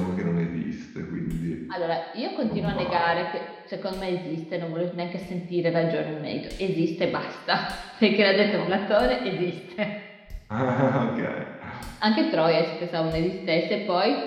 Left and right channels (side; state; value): both; identical; correlation 1.00